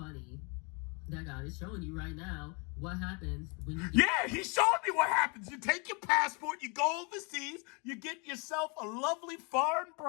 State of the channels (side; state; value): right; quieter; 32.6 dB